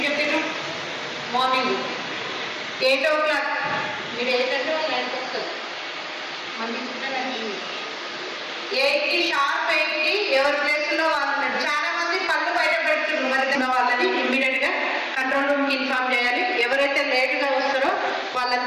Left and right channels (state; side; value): identical; both; correlation 1.00